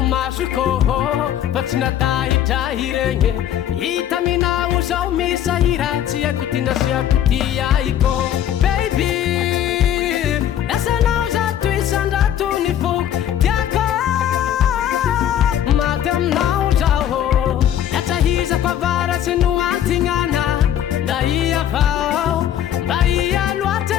masoko fa tsy natahitrahy regny hita minao zao misahira tsy haiko tinasiako ty aiko baby lasanao zato isandrato ny foko tiako maty aminao zao latsahizako avaratsy no antignana nda iavao mba ia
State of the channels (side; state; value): right; quieter; 10.7 dB